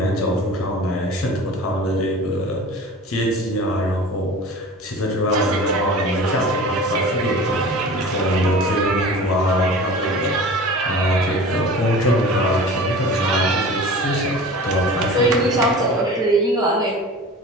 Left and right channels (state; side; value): normal; both; correlation 0.38